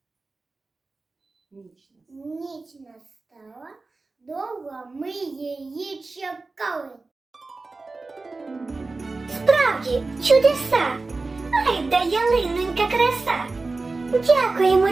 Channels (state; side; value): quieter; left; 3.6 dB